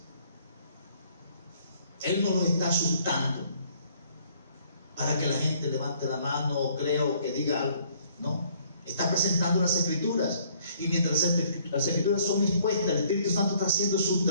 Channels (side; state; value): both; inverted; correlation -0.62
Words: Él no lo está asustando para que la gente levante la mano o crea o que diga algo. No, está presentando las Escrituras. Y mientras las Escrituras son expuestas, el Espíritu Santo está haciendo su